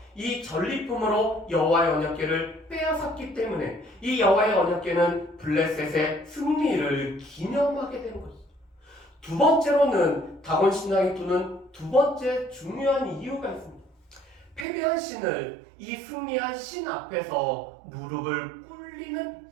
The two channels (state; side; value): drops out; left; at 14.7 s